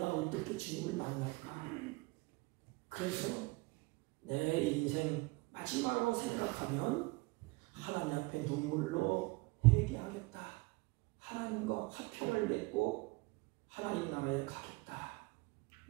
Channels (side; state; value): left; quieter; 24.6 dB